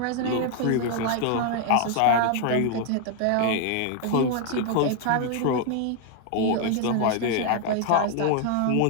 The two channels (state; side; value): different; both; correlation 0.01